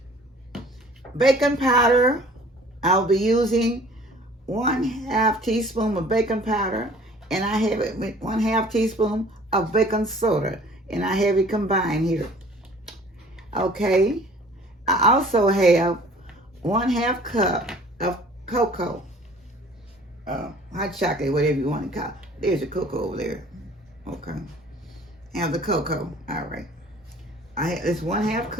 Baking powder, I'll be using 1/2 teaspoon of baking powder, and I have it with 1/2 teaspoon of baking soda, and I have it combined here. Okay. I also have 1/2 cup of cocoa, hot chocolate, whatever you want to call it. There's a cocoa over there. Okay. Have the cocoa. All right. It's 1/2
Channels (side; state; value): both; normal; correlation 0.50